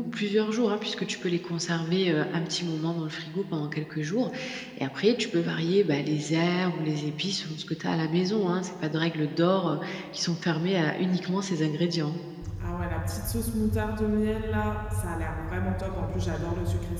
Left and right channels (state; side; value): identical; both; correlation 1.00